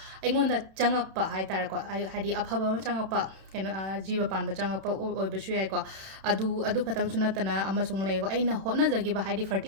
ꯑꯩꯉꯣꯟꯗ ꯆꯪꯉꯛꯄ ꯍꯥꯏꯇꯥꯔꯦꯀꯣ ꯍꯥꯏꯗꯤ ꯑꯐꯕ ꯑꯃ ꯆꯪꯉꯛꯄ ꯀꯩꯅꯣ ꯖꯤꯕ ꯄꯥꯟꯕ ꯆꯪꯉꯛꯄ ꯑꯣꯏꯕꯁꯨ ꯌꯥꯏꯀꯣ ꯑꯗꯨ ꯈꯇꯪꯁꯨ ꯅꯠꯇꯅ ꯑꯃꯁꯨꯡ ꯂꯩꯀꯣ ꯑꯩꯅ ꯍꯣꯠꯅꯖꯈꯤꯕ ꯍꯥꯏꯗꯤ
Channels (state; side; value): late; left; 31 ms